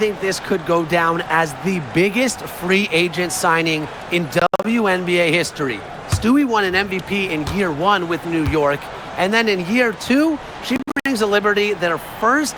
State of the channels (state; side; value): identical; both; correlation 1.00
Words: this could go down as the biggest free agent signing in WNBA history. Stewie won an MVP in year 1 with New York, and then in year 2, she brings the Liberty their first